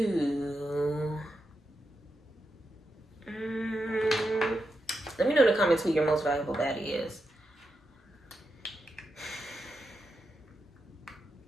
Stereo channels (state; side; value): normal; both; correlation 0.86